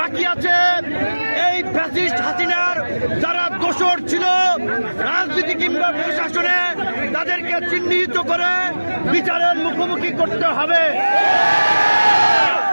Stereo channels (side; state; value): both; inverted; correlation -1.00